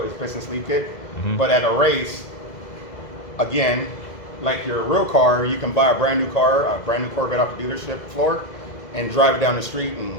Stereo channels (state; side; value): late; right; 2.0 ms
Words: It's piston sleeve kit. Mm-hmm. But at a race, again, like your real car, you can buy a brand new car, a brand new Corvette off the dealership floor, and drive it down the street